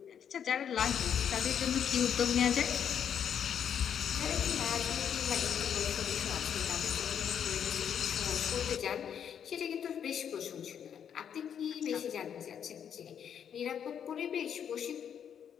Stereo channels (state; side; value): quieter; right; 8.4 dB